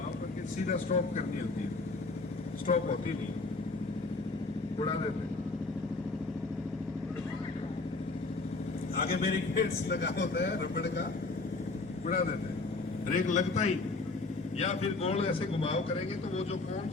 करके सीधा स्टॉप करनी होती है, स्टॉप होती नहीं, उड़ा देते। आगे बैरिकेड्स लगा होता है रबड़ का, उड़ा देते हैं, ब्रेक लगता ही, या फिर गोल ऐसे घुमाव करेंगे तो वो जो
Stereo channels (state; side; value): quieter; right; 3.6 dB